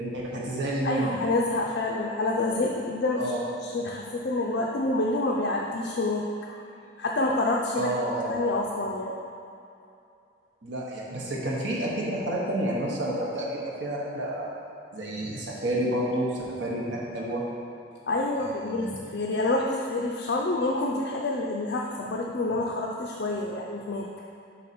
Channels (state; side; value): normal; both; correlation 0.20